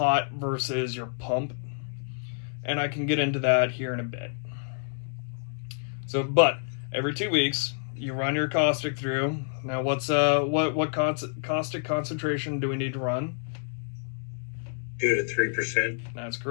versus your pump. And I can get into that here in a bit. So, but every 2 weeks, you run your caustic through. Now, what caustic concentration do we need to run? 2 to 3%. That's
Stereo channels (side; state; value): right; silent; 59 dB below the other